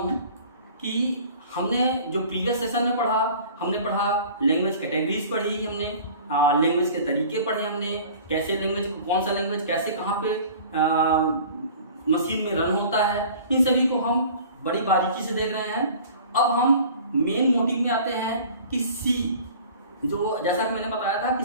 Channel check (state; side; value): inverted; both; correlation -0.45